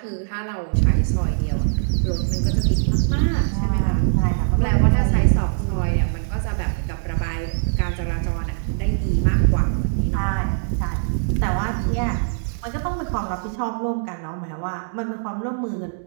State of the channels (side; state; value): left; silent; digital silence